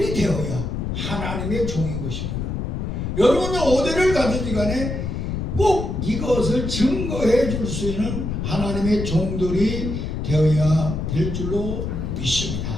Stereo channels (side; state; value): left; noise; rumble, 3 dB below the sound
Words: 되어야 하나님의 종인 것입니다. 여러분은 어디를 가든지 간에 꼭 이것을 증거해 줄 수 있는 하나님의 종들이 되어야 될 줄로